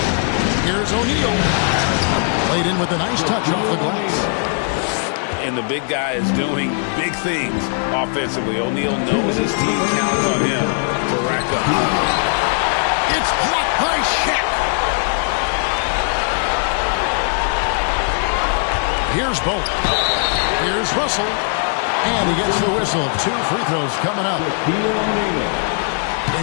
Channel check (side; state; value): right; silent; 57 dB below the other